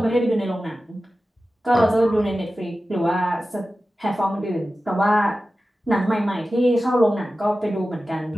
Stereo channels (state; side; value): normal; both; correlation 0.94